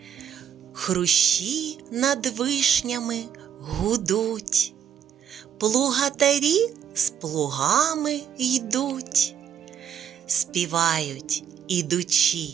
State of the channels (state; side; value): quieter; left; 8.8 dB